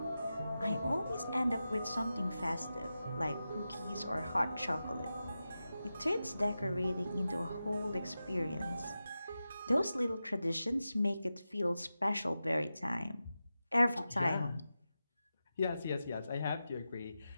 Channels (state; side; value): inverted; both; correlation -0.92